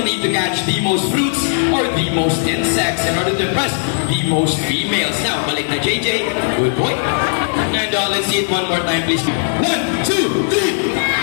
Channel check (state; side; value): silent; right; digital silence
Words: need to catch the most fruits or the most insects in order to impress the most females. Now, balik na JJ. Good boy. And let's see it one more time, please. 1, 2, 3.